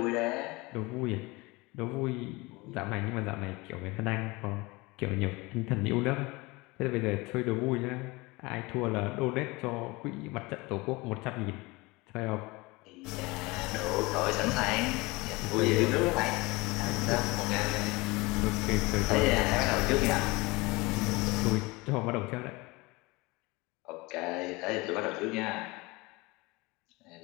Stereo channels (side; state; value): right; quieter; 23.8 dB